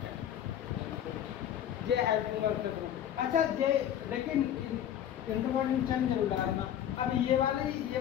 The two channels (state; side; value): quieter; right; 10.4 dB